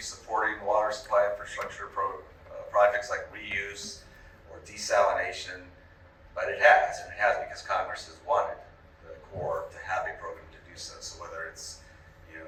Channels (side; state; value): both; identical; correlation 1.00